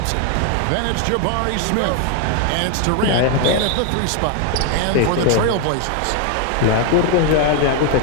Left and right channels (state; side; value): different; both; correlation 0.01